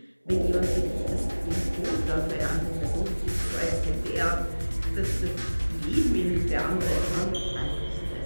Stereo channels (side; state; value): both; inverted; correlation -1.00